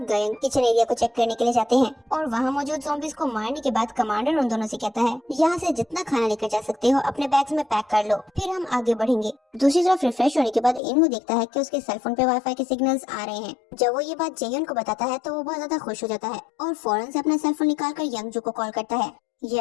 गयंग किचन एरिया को चेक करने के लिए जाते हैं, और वहाँ मौजूद ज़ॉम्बीज को मारने के बाद कमांडर उन दोनों से कहता है, यहाँ से जितना खाना लेकर जा सकते हो अपने बैग्स में पैक कर लो, फिर हम आगे बढ़ेंगे। दूसरी तरफ रिफ्रेश होने के बाद इनहू देखता है कि उसके सेलफोन पे वाईफाई के सिग्नल्स आ रहे हैं। जब वो ये बात जेयुन को बताता है तो वो बहुत ज्यादा खुश हो जाता है और फौरन से अपना सेलफोन निकालकर यंगजू को कॉल करता है।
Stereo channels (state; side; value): drops out; right; at 10.8 s